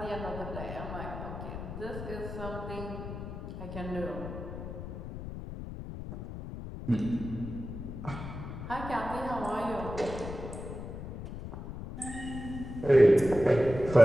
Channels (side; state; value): left; noise; rumble, 9 dB below the sound